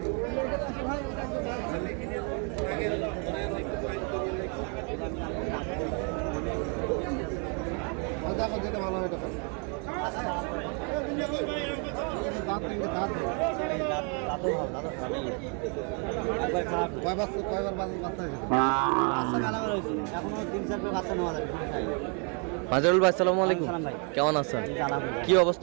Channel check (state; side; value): quieter; left; 37.7 dB